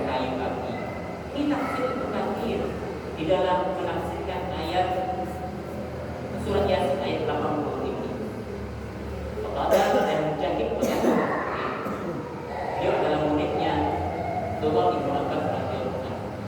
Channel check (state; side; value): identical; both; correlation 1.00